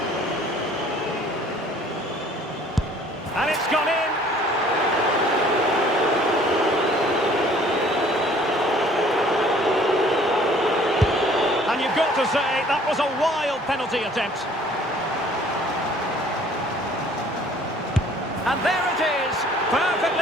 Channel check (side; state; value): both; normal; correlation 0.55